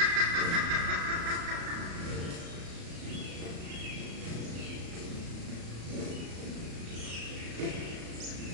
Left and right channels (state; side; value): late; left; 35 ms